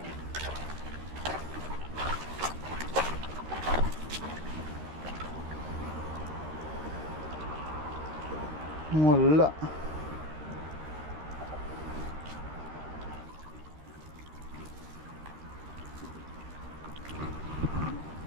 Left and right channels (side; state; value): left; late; 13 ms